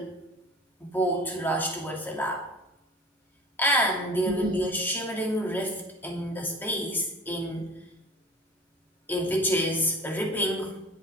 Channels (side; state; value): both; normal; correlation 0.41